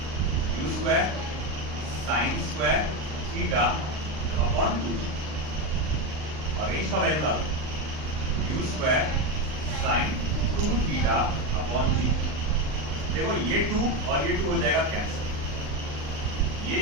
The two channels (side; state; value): left; late; 39 ms